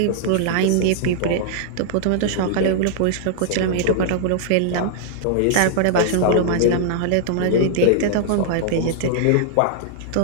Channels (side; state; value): both; different; correlation -0.01